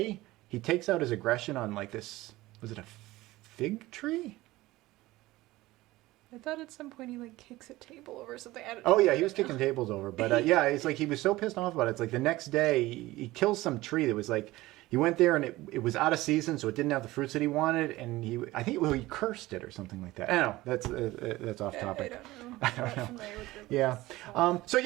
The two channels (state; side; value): quieter; left; 18.4 dB